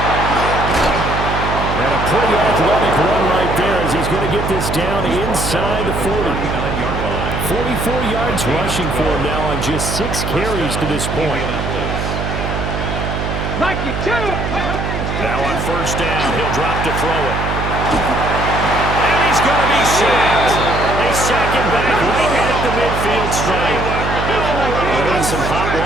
And a pretty athletic run right there as he's going to get this down inside the 40. 44 yards rushing for him now on just 6 carries to this point. Now on 1st down, he'll drop to throw it. And he's going to be sacked. They sack him back right at the midfield stripe. They're in some hot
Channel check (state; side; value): noise; right; hum, 3 dB below the sound